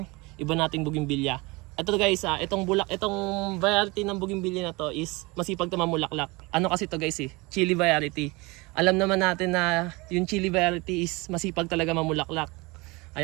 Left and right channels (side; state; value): left; quieter; 24.7 dB